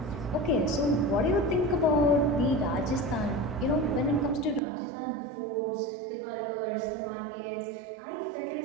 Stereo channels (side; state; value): left; drops out; at 4.6 s